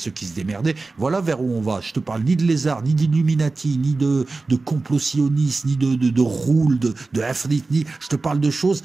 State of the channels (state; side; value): quieter; left; 3.6 dB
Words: qui se démerdaient. Voilà vers où on va. Je te parle ni de lézards, ni d'Illuminati, ni de complot sioniste, ni de roule, de Afrit, ni... Je te parle de choses